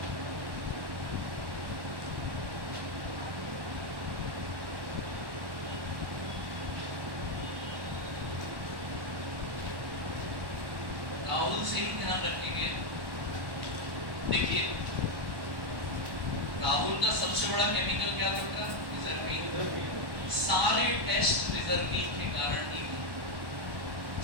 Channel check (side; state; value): left; late; 1.1 ms